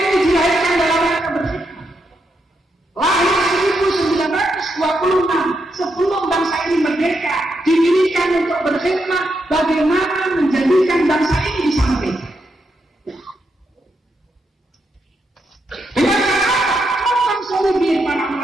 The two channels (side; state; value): both; normal; correlation 0.82